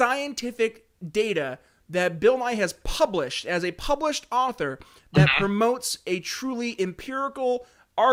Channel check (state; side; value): identical; both; correlation 1.00